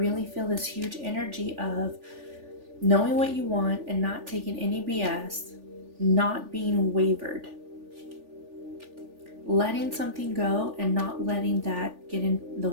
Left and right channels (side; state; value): left; late; 3.4 ms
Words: feel this huge energy of knowing what you want and not taking any BS, not being wavered, letting something go and not letting that get in the